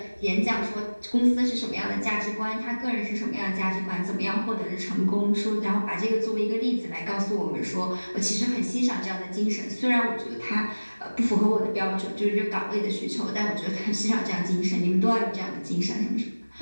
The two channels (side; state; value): both; inverted; correlation -1.00